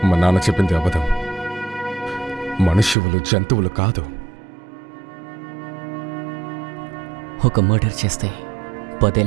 మా నాన్న చెప్పింది అబద్ధం. మనుష్యులు జంతువులు కాదు. ఒక మర్డర్ చేస్తే 10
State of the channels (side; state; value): left; drops out; at 3.0 s